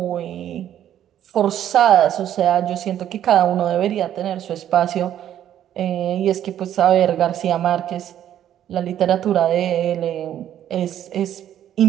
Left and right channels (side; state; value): left; quieter; 10.9 dB